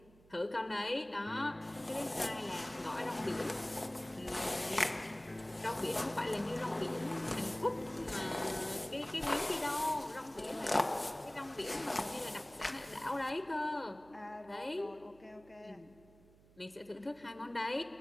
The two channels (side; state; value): right; noise; hum, 26 dB below the sound